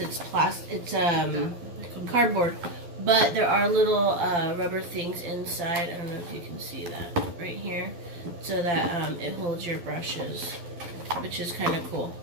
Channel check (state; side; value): late; left; 12 ms